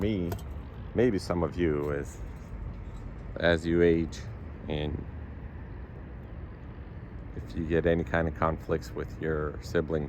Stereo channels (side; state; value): both; identical; correlation 1.00